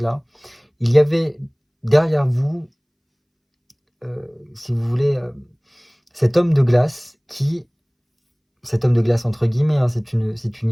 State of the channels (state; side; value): identical; both; correlation 1.00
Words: il y avait derrière vous, si vous voulez, cet homme de glace entre guillemets, hein, c'est une